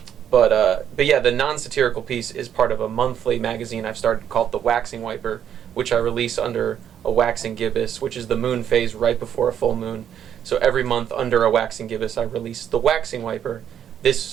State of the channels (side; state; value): left; quieter; 9.3 dB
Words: But yeah, the non-satirical piece is part of a monthly magazine I've started called The Waxing Wiper, which I release under a waxing gibbous, which is the moon phase right before a full moon. So every month under a waxing gibbous, I release The Waxing Wiper.